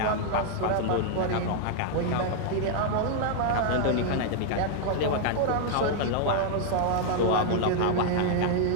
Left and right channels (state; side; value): different; both; correlation 0.00